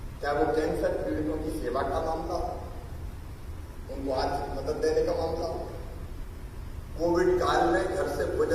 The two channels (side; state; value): both; identical; correlation 1.00